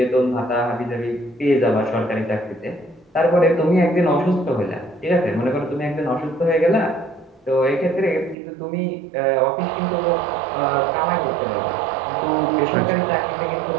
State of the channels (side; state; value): left; drops out; at 8.3 s